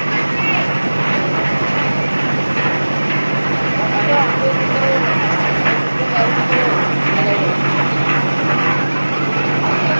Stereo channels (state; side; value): inverted; both; correlation -1.00